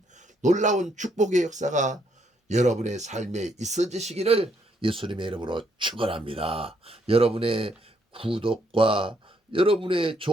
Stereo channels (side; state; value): both; normal; correlation 0.72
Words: 놀라운 축복의 역사가 여러분의 삶에 있어지시기를 예수님의 이름으로 축원합니다. 여러분의 구독과 여러분의